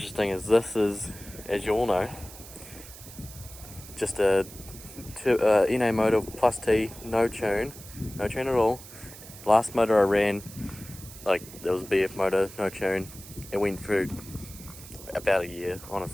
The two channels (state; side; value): noise; right; hiss, 16 dB below the sound